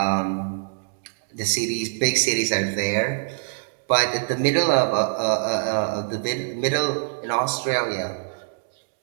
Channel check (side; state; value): left; silent; digital silence